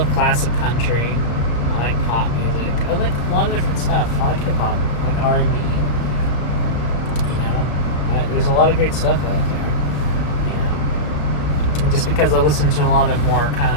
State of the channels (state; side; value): late; right; 34 ms